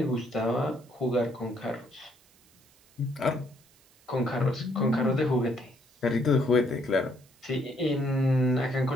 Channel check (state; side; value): noise; right; hiss, 30 dB below the sound